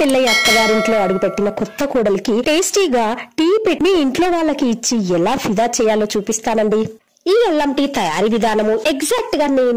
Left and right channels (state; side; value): identical; both; correlation 1.00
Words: అత్తగారింట్లో అడుగుపెట్టిన కొత్త కోడలికి టేస్టీగా టీ పెట్టి మీ ఇంట్లో వాళ్ళకి ఇచ్చి ఎలా ఫిదా చేయాలో చూపిస్తానండి. ఈ అల్లం టీ తయారీ విధానము ఎగ్జాక్ట్ గా